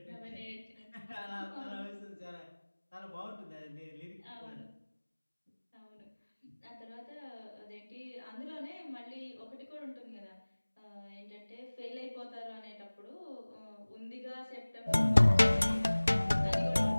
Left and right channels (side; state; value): both; inverted; correlation -1.00